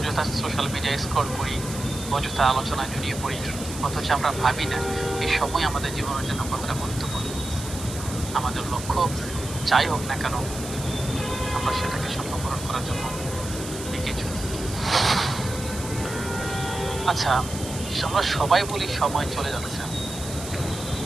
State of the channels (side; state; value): right; noise; hiss, 11 dB below the sound